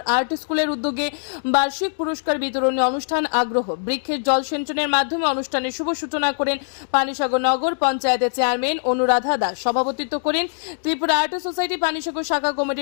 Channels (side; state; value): right; silent; digital silence